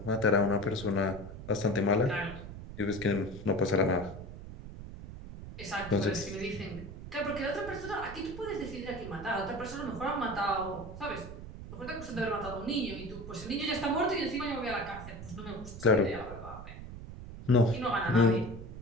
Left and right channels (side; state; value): right; noise; rumble, 12 dB below the sound